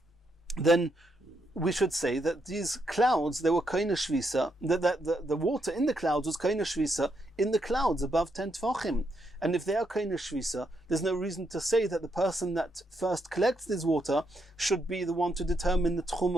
then we should say that these clouds, they were kaina shvisa, that the water in the clouds was kaina shvisa in the clouds above 10 tvachim. And if they are kaina shvisa, there's no reason to say that the person that first collects this water should be the one to determine the tchum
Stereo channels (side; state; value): both; normal; correlation 0.79